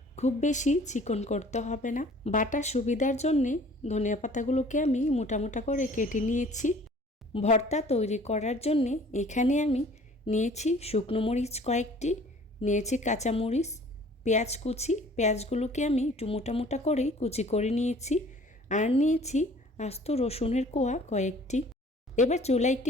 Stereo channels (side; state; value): both; normal; correlation 0.51